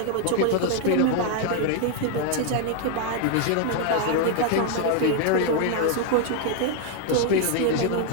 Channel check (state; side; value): different; both; correlation 0.00